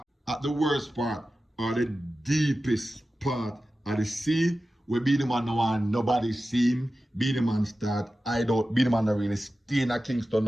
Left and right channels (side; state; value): both; normal; correlation 0.94